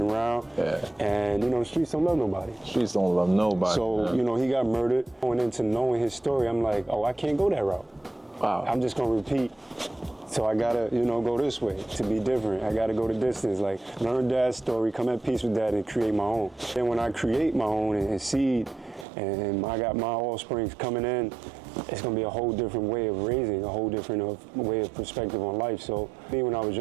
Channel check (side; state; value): left; drops out; at 19.1 s